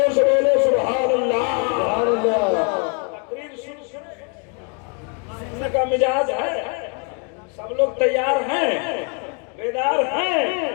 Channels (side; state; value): right; quieter; 36.5 dB